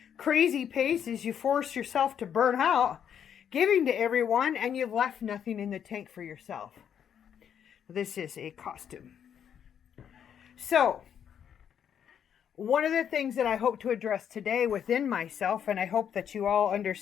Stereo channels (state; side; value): quieter; right; 8.7 dB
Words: crazy paces. You force yourself to burn out, giving to everyone, and you've left nothing in the tank for yourself. This is a costume. So, one of the things that I hope to address today within myself, and I hope that you all